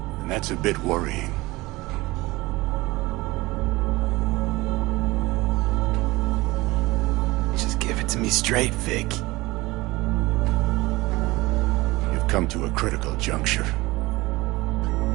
And that's a bit worrying. Just give it to me straight, Vic. You've come to a critical juncture.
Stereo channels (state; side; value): quieter; left; 20.9 dB